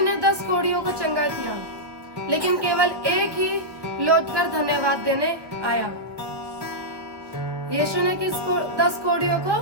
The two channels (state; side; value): late; left; 1.5 ms